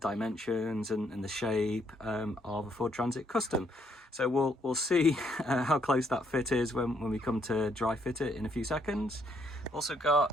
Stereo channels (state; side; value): normal; both; correlation 0.72